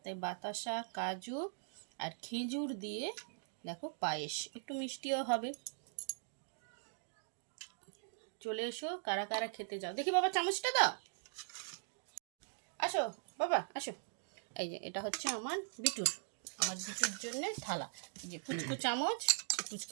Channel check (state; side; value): silent; left; digital silence